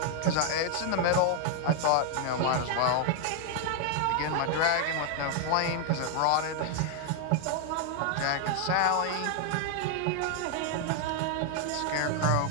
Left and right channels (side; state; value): both; different; correlation 0.00